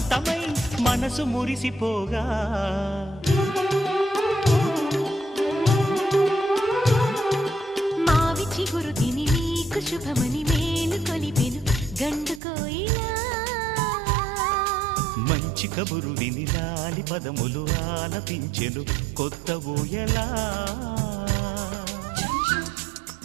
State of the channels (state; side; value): drops out; left; at 12.4 s